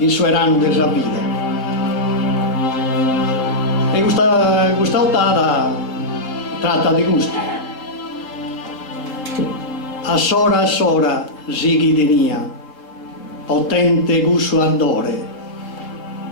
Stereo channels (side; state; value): right; late; 3.7 ms